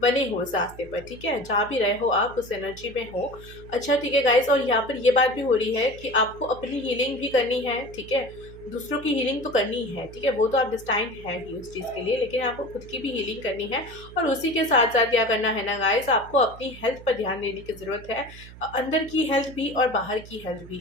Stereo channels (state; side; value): noise; right; hum, 17 dB below the sound